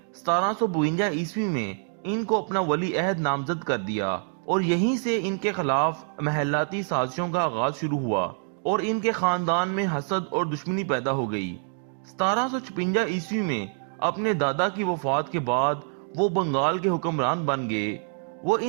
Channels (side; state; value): left; silent; 61 dB below the other